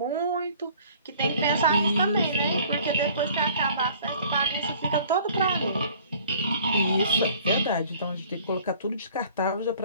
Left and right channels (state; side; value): inverted; both; correlation -0.53